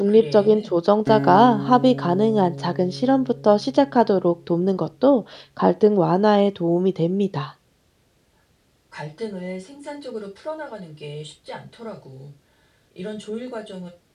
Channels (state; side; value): identical; both; correlation 1.00